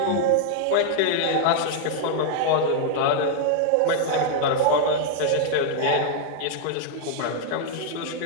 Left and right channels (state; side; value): different; both; correlation 0.00